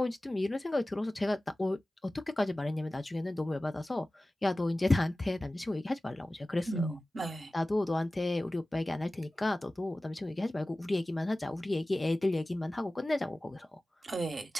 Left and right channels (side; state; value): both; normal; correlation 0.97